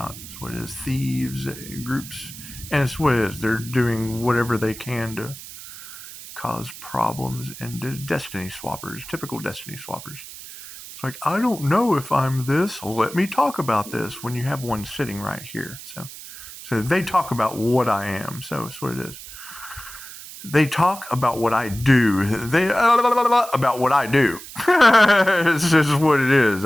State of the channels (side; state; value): right; noise; hiss, 14 dB below the sound